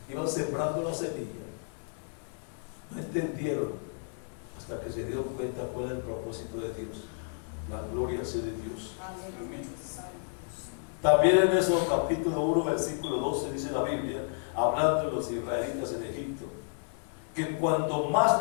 Iban sembrando la semilla. No entendieron hasta que se dieron cuenta cuál era el propósito de Dios. La gloria sea de Dios. Amén. También en ese capítulo 1, versículo 12, dice la Biblia, hablando de los israelitas en Egipto, que cuando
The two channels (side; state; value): right; silent; digital silence